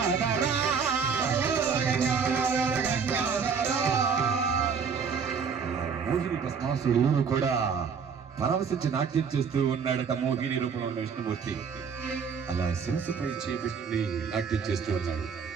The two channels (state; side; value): quieter; left; 6.1 dB